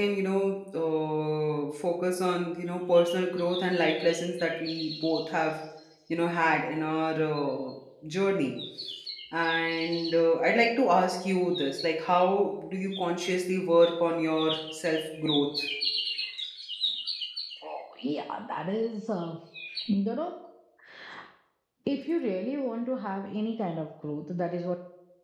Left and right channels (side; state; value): both; identical; correlation 1.00